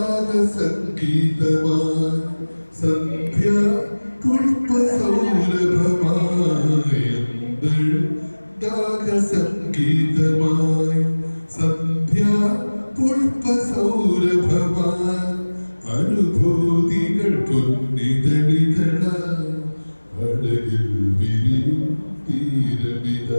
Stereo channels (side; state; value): both; inverted; correlation -1.00